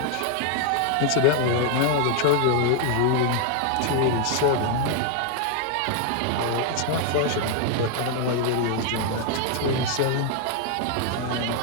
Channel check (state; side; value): different; both; correlation 0.00